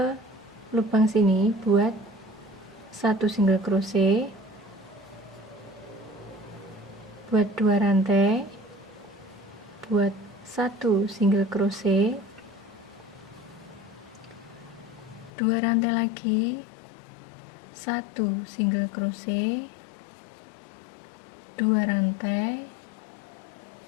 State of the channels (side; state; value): right; drops out; at 15.3 s